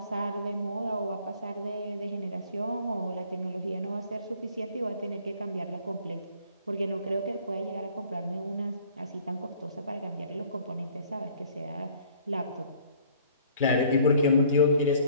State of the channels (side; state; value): both; inverted; correlation -0.55